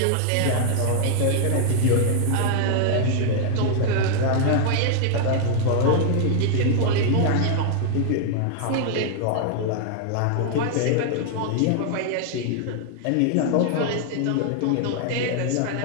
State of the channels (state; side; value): different; both; correlation 0.00